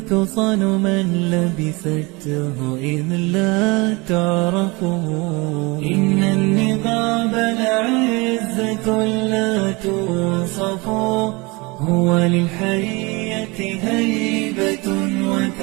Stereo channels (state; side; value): quieter; left; 25.9 dB